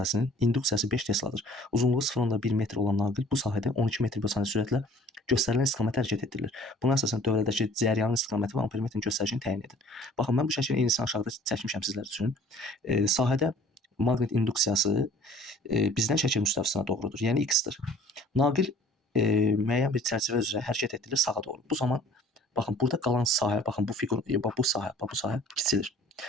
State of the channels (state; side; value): normal; both; correlation 0.51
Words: induksiyası 5 Tesladır. Uzunluğu 0,1 metr olan naqil bu sahədə 12 metr bölü saniyə sürətlə göstərilən istiqamətə hərəkət etdirilir. Buna əsasən dövrədəki cəryanın istiqaməti və ampermetrin göstəricini təyin edin. Baxın, mən bu şəklin eynisini aşağıda çəkmişəm sizlər üçün. Sahədə maqnit induksiyası bizdən şəkil müstəvisinə doğrudur, yəni x-dir. Naqil müəyyən bir çərçivə üzrə hərəkət etdirilir sağa doğru. Bu zaman baxın, burada qalan sahə, baxın bu fiqur, bu sahə kiçilir.